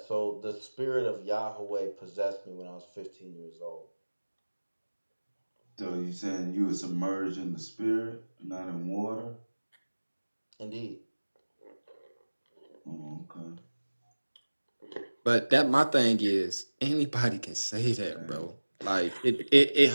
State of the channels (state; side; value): inverted; both; correlation -1.00